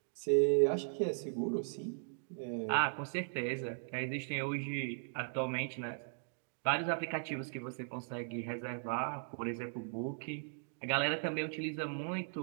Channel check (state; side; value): silent; left; digital silence